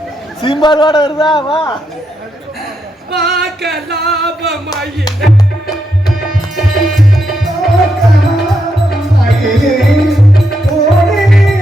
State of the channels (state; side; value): normal; both; correlation 0.81